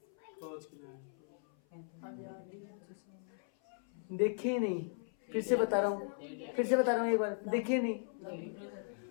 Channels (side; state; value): right; silent; 53 dB below the other